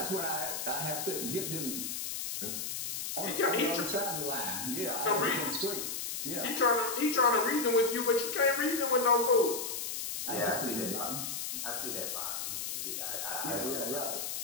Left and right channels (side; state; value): left; noise; hiss, 4 dB below the sound